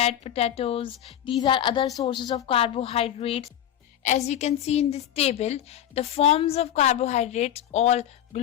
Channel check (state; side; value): quieter; right; 11.0 dB